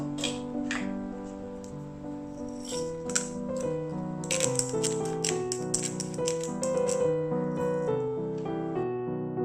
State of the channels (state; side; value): identical; both; correlation 1.00